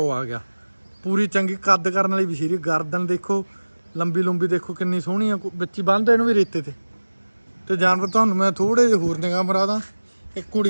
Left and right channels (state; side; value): inverted; both; correlation -1.00